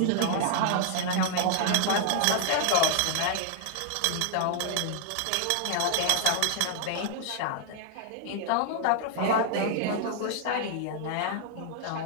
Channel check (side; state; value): both; different; correlation 0.00